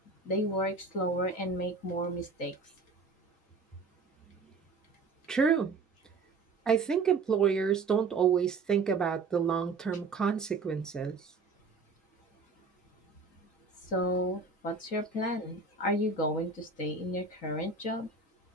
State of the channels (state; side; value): quieter; left; 4.1 dB